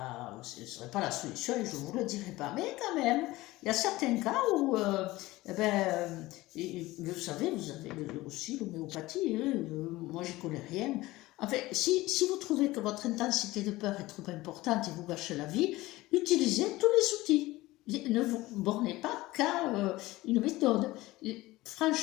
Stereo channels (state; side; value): quieter; right; 18.8 dB